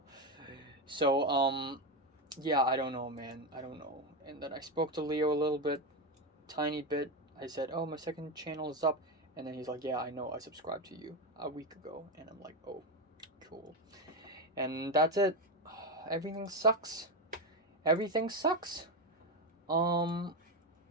So yeah, I don't know, man. I don't know. And then I spoke to Leo a little bit, tiny bit. I said, "Oh, my second channel is up." And then he's like, "Yeah, I know. I subscribed to you a week ago." And I'm like, "Oh, cool." And that's it. Everything sucks. Everything sucks.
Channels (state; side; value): normal; both; correlation 0.12